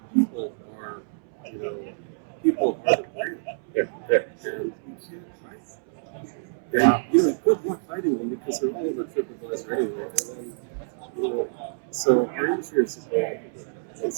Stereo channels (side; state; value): left; silent; 60 dB below the other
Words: people are you know, people are the brand, Yeah. and you can't hide them. And, you know, good luck hiding them because they're all over TripAdvisor anyway. And then, you know, so our insurance is going and